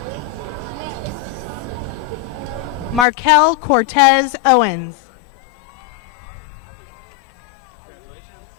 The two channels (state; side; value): drops out; right; at 3.1 s